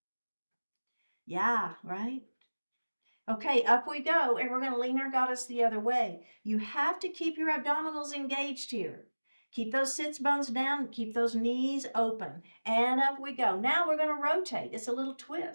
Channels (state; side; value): inverted; both; correlation -1.00